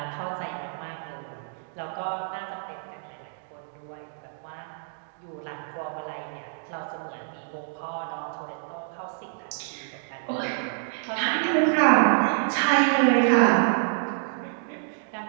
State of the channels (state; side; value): silent; left; digital silence